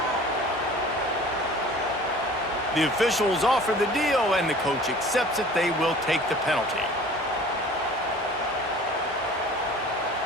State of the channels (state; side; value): normal; both; correlation 0.45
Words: The officials offer the deal, and the coach accepts it. They will take the penalty.